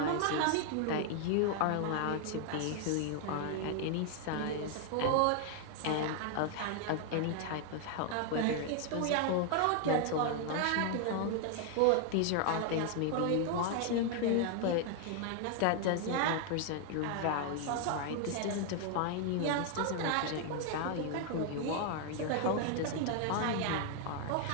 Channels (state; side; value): different; both; correlation 0.00